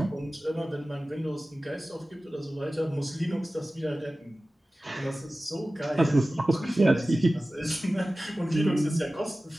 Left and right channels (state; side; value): normal; both; correlation 0.96